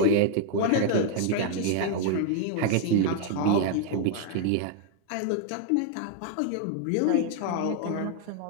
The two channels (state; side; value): different; both; correlation 0.00